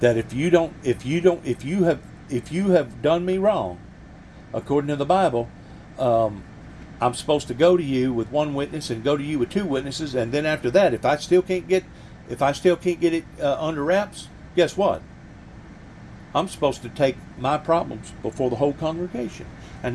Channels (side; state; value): both; identical; correlation 1.00